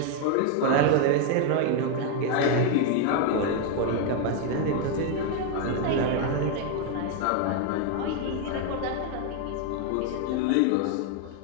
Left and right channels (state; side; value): different; both; correlation 0.01